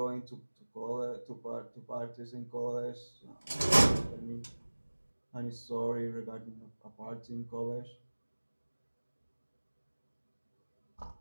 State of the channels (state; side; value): inverted; both; correlation -1.00